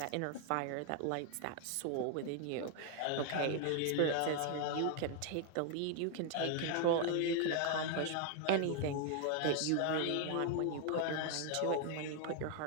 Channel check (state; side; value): different; both; correlation 0.00